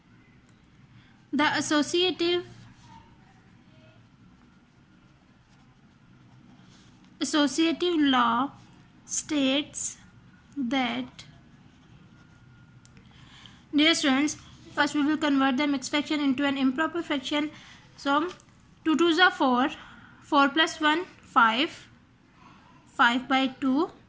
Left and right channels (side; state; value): both; identical; correlation 1.00